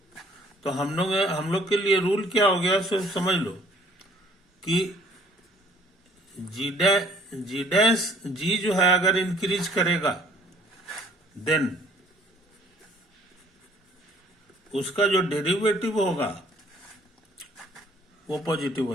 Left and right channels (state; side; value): normal; both; correlation 0.58